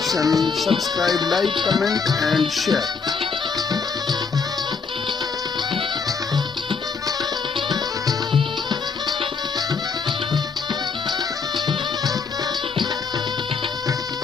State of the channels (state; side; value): quieter; right; 5.2 dB